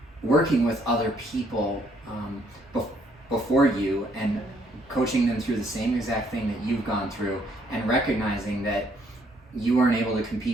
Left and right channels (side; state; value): both; normal; correlation 0.68